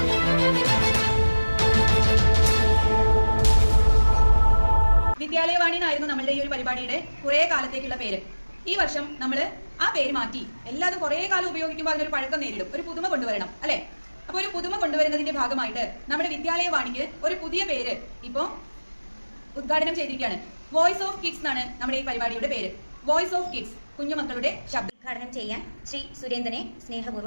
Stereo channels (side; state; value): both; inverted; correlation -1.00